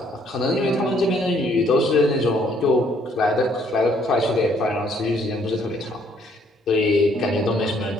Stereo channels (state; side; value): normal; both; correlation 0.65